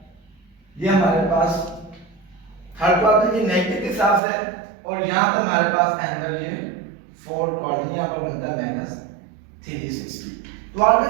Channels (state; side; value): drops out; left; at 4.2 s